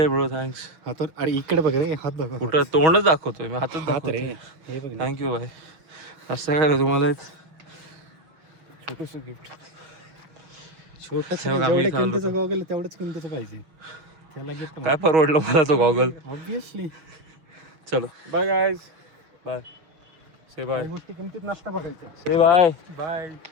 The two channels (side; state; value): left; late; 6.3 ms